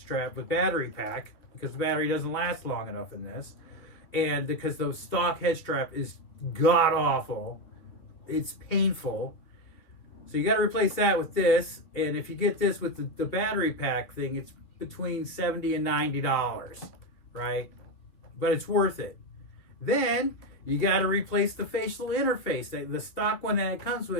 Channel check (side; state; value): right; late; 2.9 ms